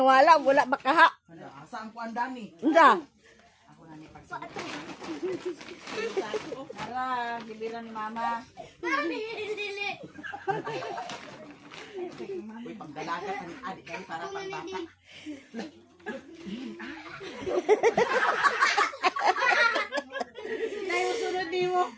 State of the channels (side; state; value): both; identical; correlation 1.00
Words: wala ba kaha? Asa ang kuan dani? Unsa? Ako na ni pagsigo. Tara, giliran ni mama. Uy, pagdalaga ka ni adik kay para pagbata. Tayo sunod di mo.